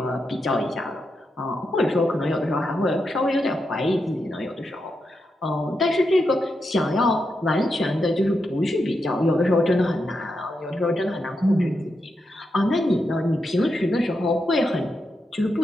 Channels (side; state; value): both; normal; correlation 0.85